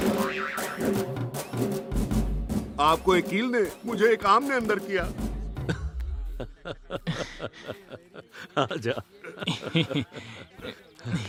आपको एक कील ने, मुझे एक आम ने अंदर किया। आजा।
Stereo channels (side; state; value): both; identical; correlation 1.00